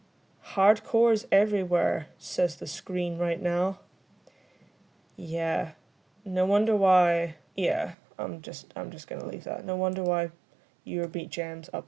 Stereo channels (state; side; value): drops out; left; at 8.0 s